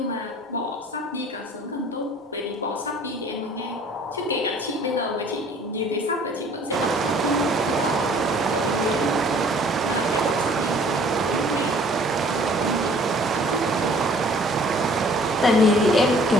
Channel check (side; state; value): both; normal; correlation 0.54